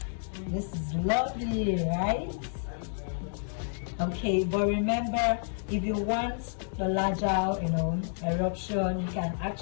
this is lovely, right? Okay, but remember, if you want the larger, eruption, you can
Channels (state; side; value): silent; right; 58 dB below the other